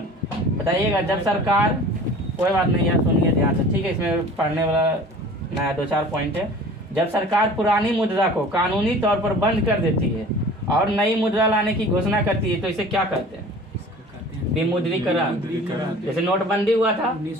बताइएगा, जब सरकार, कोई बात नहीं यार, सुनिए ध्यान से। ठीक है। इसमें पढ़ने वाला नया 2-4 पॉइंट है। जब सरकार पुरानी मुद्रा को कानूनी तौर पर बंद कर देती है और नई मुद्रा लाने की घोषणा करती है, तो इसे क्या कहते हैं? विमुद्रीकरण। जैसे नोटबंदी हुआ था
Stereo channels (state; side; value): normal; both; correlation 0.44